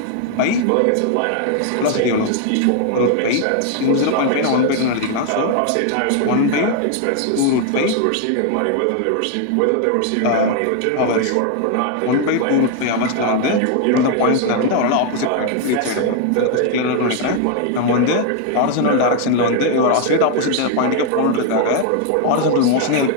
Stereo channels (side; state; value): both; different; correlation 0.00